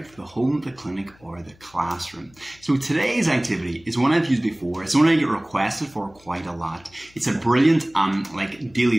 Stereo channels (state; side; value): noise; left; hum, 28 dB below the sound